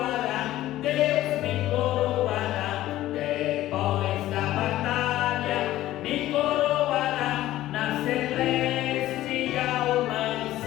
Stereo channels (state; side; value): quieter; right; 14.8 dB